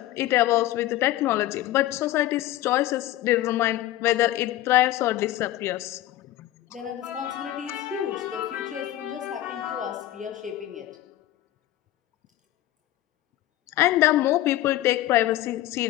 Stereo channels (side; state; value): right; quieter; 14.7 dB